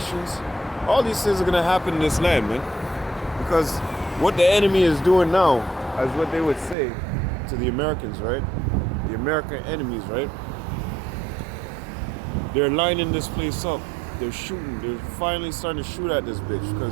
All these things are going to happen in this land, man. Because what the enemy is doing now, as what they would say to the Americans, right? The American enemies, right? They're lining this place up. They're shooting. They're finally starting to shoot at this bitch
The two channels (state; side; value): drops out; left; at 6.8 s